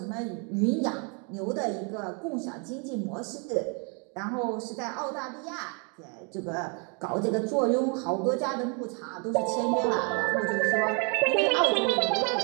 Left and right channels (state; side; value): quieter; left; 35.8 dB